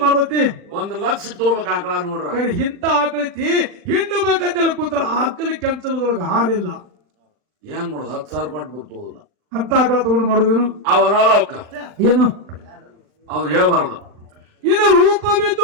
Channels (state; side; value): late; left; 39 ms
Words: ಮಾಡ್ತೈತಿ? 1,00,000 ತಗೋಬೇಕ ಆಕಳ ನೋಡ್ರ. ಕರೆ ಇಂತ ಆಕಳೈತಿ ಹಿಂಡಬೇಕಂತೇಳಿ ಕೂತ್ರ ಆಕಳಿ ಕೆಂಚಲದೊಳಗ ಹಾಲಿಲ್ಲ. ಏನ್ ಮಾಡುದು 10,000 ಕೊಟ್ಟು ಬರ್ತೋದಿಲ್ಲ ಅಂತ ಆಕಳ ತಗೊಂಡು ಮಾಡುದೇನು? ಅವರಲ್ಲ ಅವಕ್ಕ ಏನು ಅವ್ರು ಹೇಳ್ಬಾರ್ದು. ಇನ್ನು